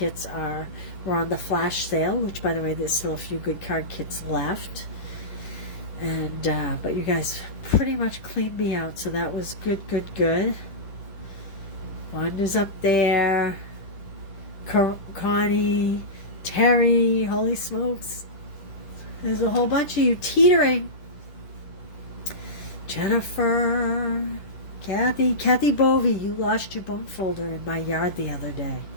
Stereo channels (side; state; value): right; late; 10 ms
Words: were on the flash sale, which, by the way, there's still a few good card kits left. And but you guys pretty much cleaned me out, so that was good, good, good. Wanda's up there. Connie, Terry, holy smokes. There's a whole bunch of you teetering. Jennifer, Kathy Bovey, you lost your bone folder in my yard the other day.